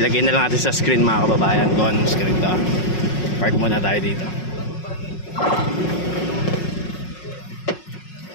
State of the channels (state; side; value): late; right; 5.5 ms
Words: na lang natin sa screen mga kababayan kung anong screen to. Park muna tayo dito.